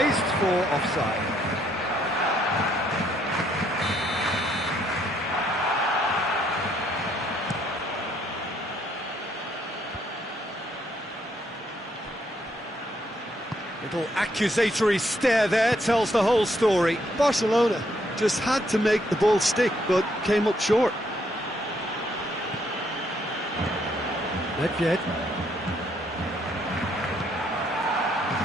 for offside. Little accusatory stare there tells the whole story. Barcelona just had to make the ball stick, but came up short. Nedved.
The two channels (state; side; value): normal; both; correlation 0.71